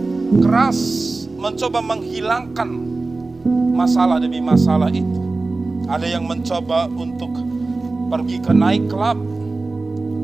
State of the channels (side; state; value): left; quieter; 3.4 dB